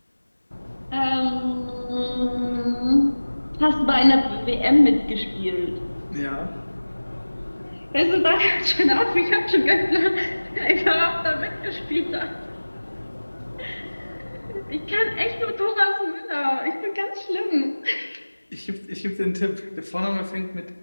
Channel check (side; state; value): both; inverted; correlation -1.00